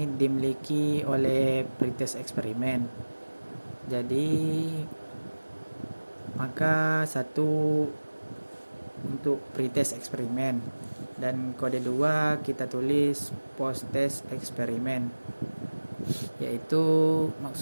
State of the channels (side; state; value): both; inverted; correlation -1.00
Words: dimiliki oleh pretest eksperimen. Jadi maka 1 untuk pretest eksperimen, dan kode 2 kita tulis post test eksperimen, yaitu